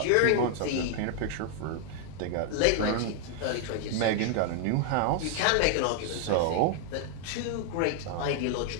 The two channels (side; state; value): both; different; correlation 0.00